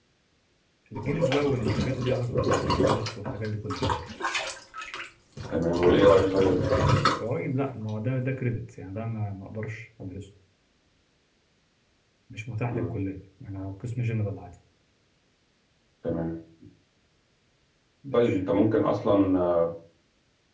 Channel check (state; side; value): identical; both; correlation 1.00